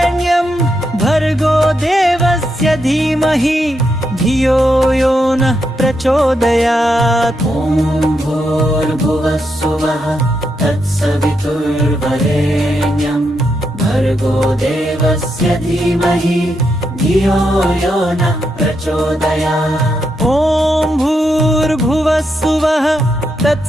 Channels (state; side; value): normal; both; correlation 0.82